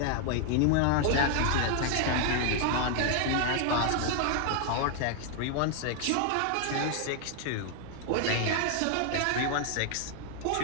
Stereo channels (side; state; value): both; different; correlation 0.00